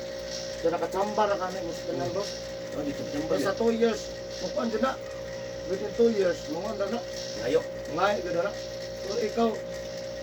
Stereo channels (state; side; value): identical; both; correlation 1.00